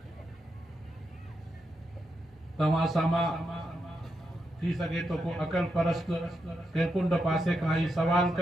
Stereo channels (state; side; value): normal; both; correlation 0.85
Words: तव्हां सां थी सके तो को अकल परस्त के कुंड पासे खां ही सवाल